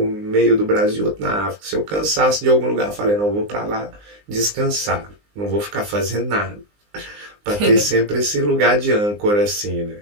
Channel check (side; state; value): left; late; 19 ms